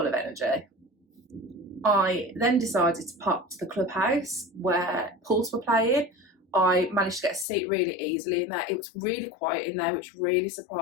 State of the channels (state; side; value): drops out; right; at 7.5 s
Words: of energy. I then decided to pop to the clubhouse where Pulse were playing. I managed to get a seat really easily in there. It was really quiet in there, which really